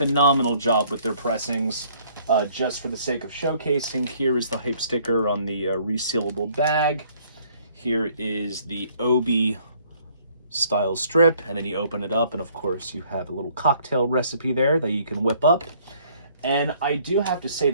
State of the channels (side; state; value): both; inverted; correlation -0.61